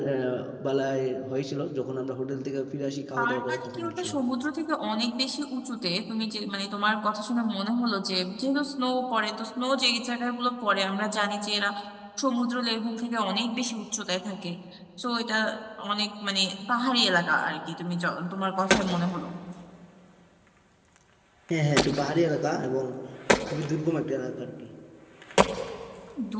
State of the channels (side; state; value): both; identical; correlation 1.00